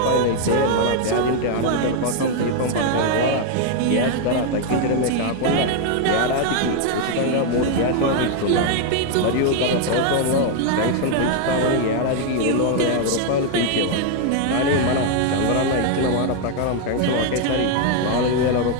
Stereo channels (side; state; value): both; different; correlation 0.01